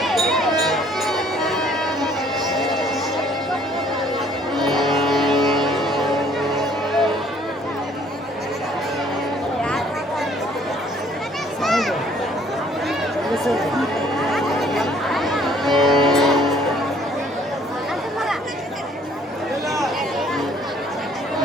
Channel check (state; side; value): normal; both; correlation 0.60